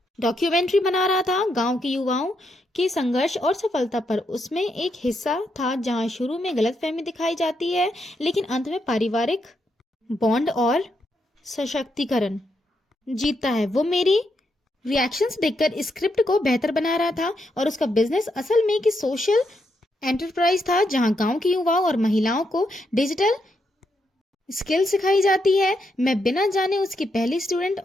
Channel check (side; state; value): both; normal; correlation 0.80